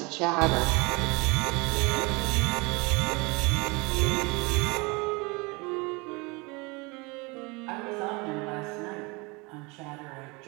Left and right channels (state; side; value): quieter; left; 27.0 dB